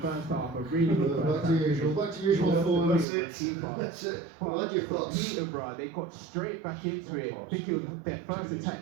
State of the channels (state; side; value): drops out; left; at 3.1 s